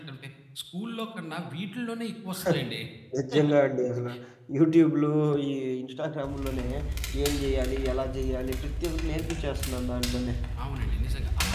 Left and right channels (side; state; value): both; identical; correlation 1.00